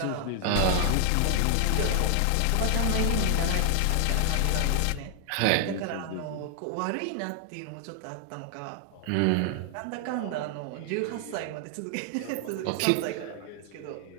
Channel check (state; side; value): different; both; correlation 0.00